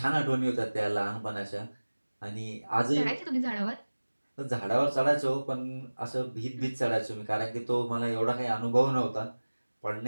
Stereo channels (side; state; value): both; inverted; correlation -1.00